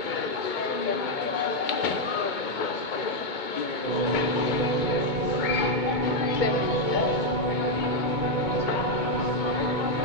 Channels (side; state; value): right; late; 2.2 ms